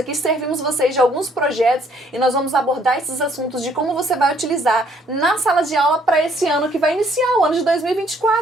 servimos vocês de alguns projetos e nós vamos abordar esses assuntos de como você vai utilizar na sala de aula para esse ano que vai iniciar, o ano de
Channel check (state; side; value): normal; both; correlation 0.64